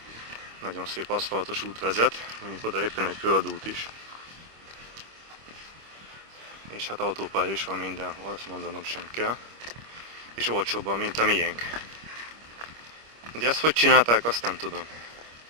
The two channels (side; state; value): left; late; 25 ms